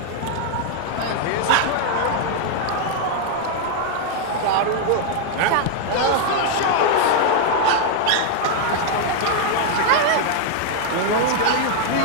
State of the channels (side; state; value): both; different; correlation 0.00